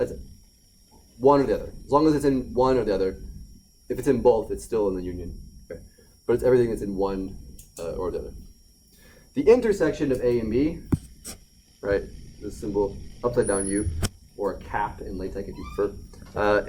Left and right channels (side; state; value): both; identical; correlation 1.00